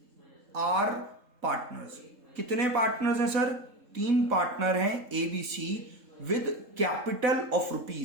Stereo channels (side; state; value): left; late; 3.7 ms